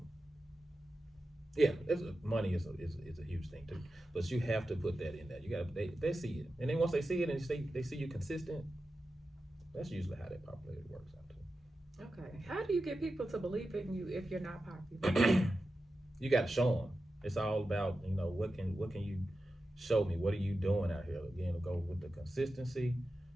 yeah, money is a huge thing too. But you have to put that in there. You got they see it, and then once they see it and they see you consistent, that's usually how that popularity works out too. Okay. How do you get people to believe in you if you're not popular? You got to show them. It's all about, what can you show me? What are you doing out here? Again, go with the consistency.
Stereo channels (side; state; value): both; normal; correlation 0.92